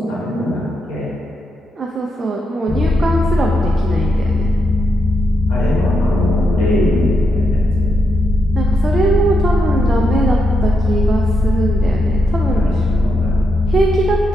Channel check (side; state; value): both; normal; correlation 0.82